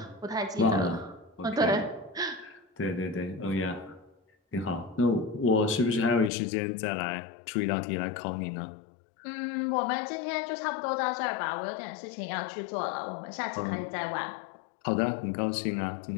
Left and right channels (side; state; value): right; drops out; at 6.3 s